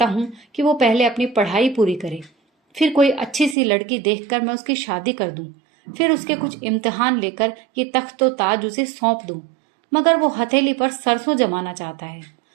हूं कि वो पहले अपनी पढ़ाई पूरी करे, फिर कोई अच्छी सी लड़की देखकर मैं उसकी शादी कर दूं, फिर उसके कुछ इम्तिहान लेकर ये तख्त व ताज उसे सौंप दूं। मगर वो हथेली पर सरसों जमाना चाहता है,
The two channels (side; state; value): left; drops out; at 3.6 s